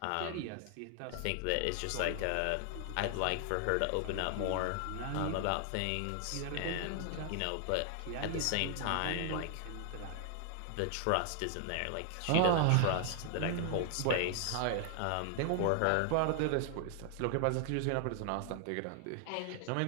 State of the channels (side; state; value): both; different; correlation 0.00